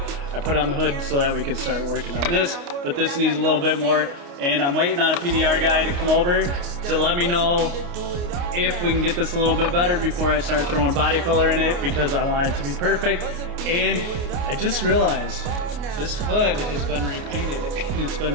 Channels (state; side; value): late; left; 29 ms